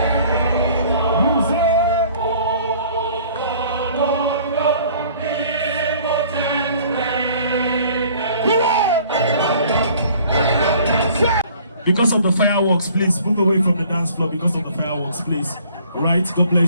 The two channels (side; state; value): both; inverted; correlation -0.54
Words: Because of the fireworks, please move away from the dance floor. Because of the fireworks, please. All right, God